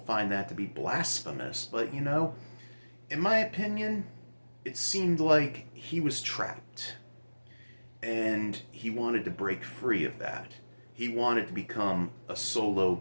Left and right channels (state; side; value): inverted; both; correlation -1.00